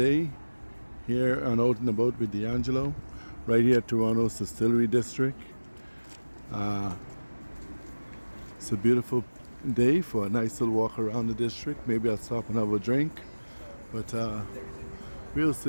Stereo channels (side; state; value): both; inverted; correlation -1.00